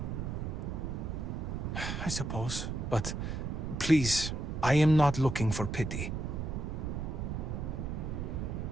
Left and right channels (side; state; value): right; noise; rumble, 3 dB below the sound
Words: I suppose, but please, I am not looking for pity.